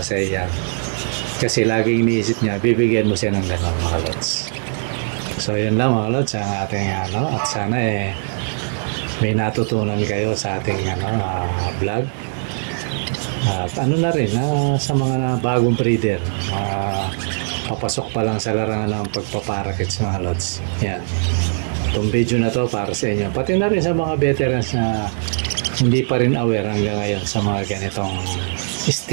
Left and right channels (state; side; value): silent; left; digital silence